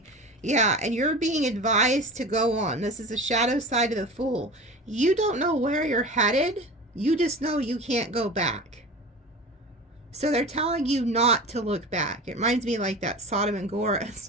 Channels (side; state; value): both; normal; correlation 0.33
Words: Yeah, and you're being advised to go on. This is a shadow side of the Fool. You don't know where you're headed. You just know you can't go back. So they're telling you not to look back. It reminds me like that Sodom and